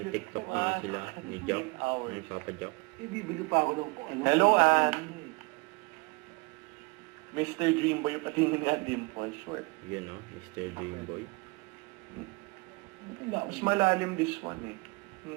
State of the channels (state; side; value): quieter; left; 26.9 dB